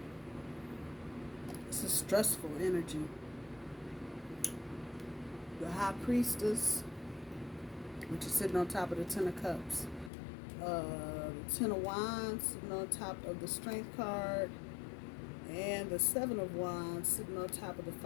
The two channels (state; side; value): drops out; right; at 10.1 s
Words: It's a stressful energy. The High Priestess, which is sitting on top of the Ten of Cups. The Ten of Wands sitting on top of the Strength card. And the Seven of Wands sitting on top of the